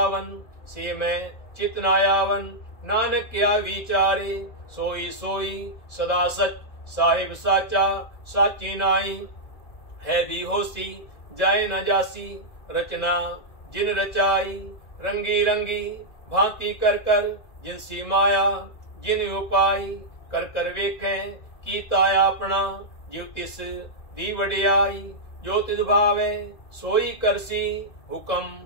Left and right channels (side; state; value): right; late; 2.0 ms